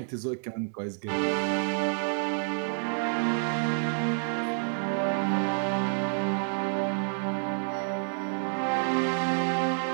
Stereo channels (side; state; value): left; silent; 59 dB below the other